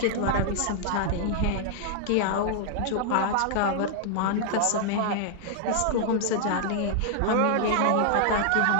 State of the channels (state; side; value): different; both; correlation -0.01